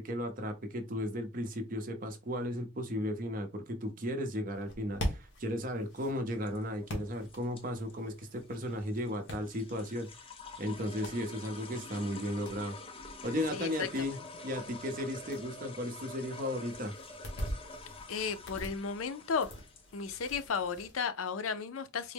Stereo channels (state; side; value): normal; both; correlation 0.40